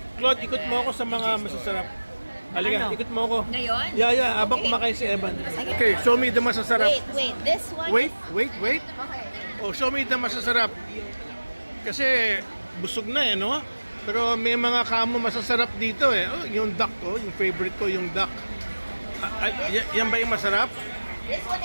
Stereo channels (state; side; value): inverted; both; correlation -1.00